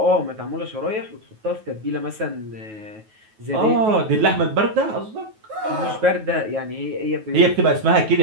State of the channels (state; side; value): late; left; 9.3 ms